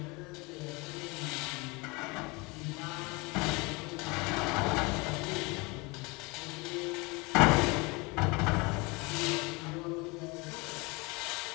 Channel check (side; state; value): right; quieter; 26.5 dB